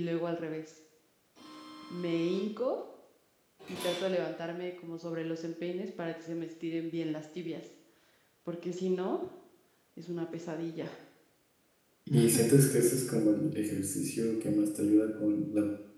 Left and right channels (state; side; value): identical; both; correlation 1.00